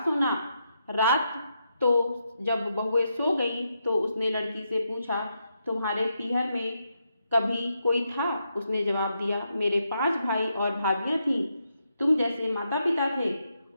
सोना। रात तो जब बहुएं सो गई तो उसने लड़की से पूछा, तुम्हारे पीहर में कभी कोई था। उसने जवाब दिया, मेरे 5 भाई और भाभियां थीं, तुम जैसे माता पिता थे।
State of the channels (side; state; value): both; inverted; correlation -0.82